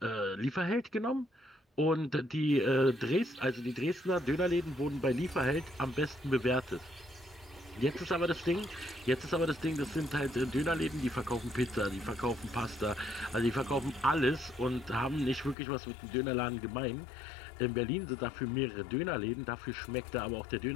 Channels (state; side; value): drops out; right; at 15.6 s